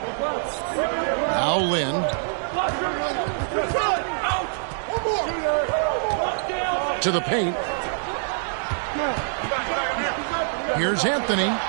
Now Lynn. to the paint. Here's Anthony.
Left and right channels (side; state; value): left; silent; 62 dB below the other